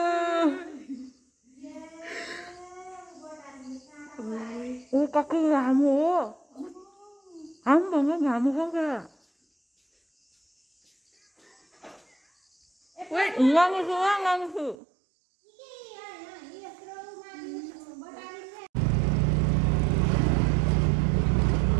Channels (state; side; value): drops out; left; at 14.8 s